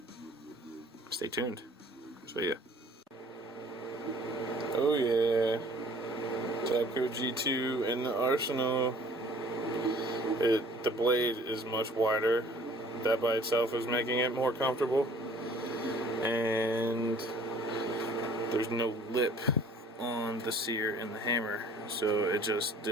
stay tuned. So yeah. Oh yeah. Tapco G2 in the Arsenal. The blade is much wider. That by itself is making it more comfortable. And there's no lip on the sear in the hammer, so it just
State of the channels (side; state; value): both; normal; correlation 0.53